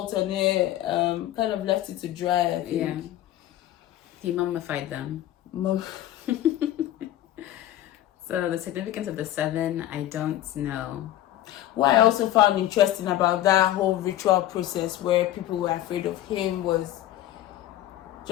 on it, kind of left it to dry, I think. Yeah. He mummified them. So the significance of the 7, I don't know. What I also found interesting about that whole ritual process where people were afraid of him was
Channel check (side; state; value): right; quieter; 13.4 dB